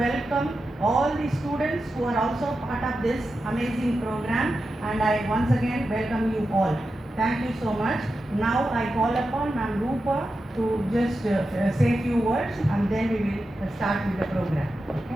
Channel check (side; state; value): both; normal; correlation 0.90